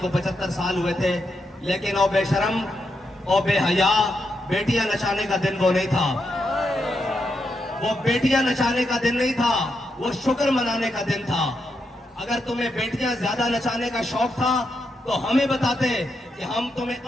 75 साल हुए थे, लेकिन ओ बेशरम ओ बेहया बेटियां नचाने का दिन वो नहीं था। वो बेटियां नचाने का दिन नहीं था, वो शुक्र मनाने का दिन था। अगर तुम्हें बेटियां ज्यादा नचाने का शौक था तो हमें बताते कि हम तुम्हें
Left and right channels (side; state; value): both; normal; correlation 0.83